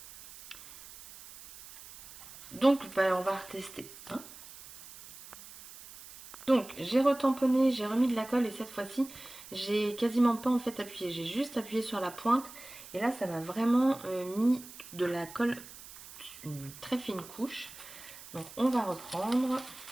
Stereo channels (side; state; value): right; noise; hiss, 17 dB below the sound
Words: Donc, bah, on va retester. Hein. Donc, j'ai retamponné, j'ai remis de la colle et cette fois-ci, j'ai quasiment pas en fait appuyé. J'ai juste appuyé sur la pointe et là, ça m'a vraiment mis de la colle, une très fine couche. Donc, on va reprendre